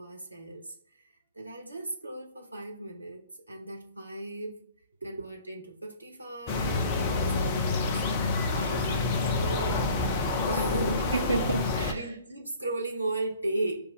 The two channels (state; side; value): inverted; both; correlation -0.50